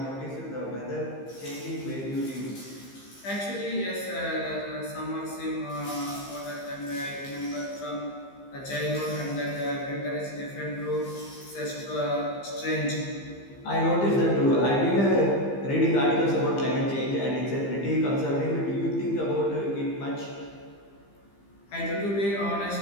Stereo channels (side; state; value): right; late; 15 ms